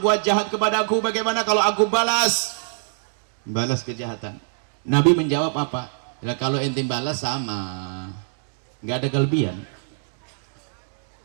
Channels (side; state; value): left; silent; digital silence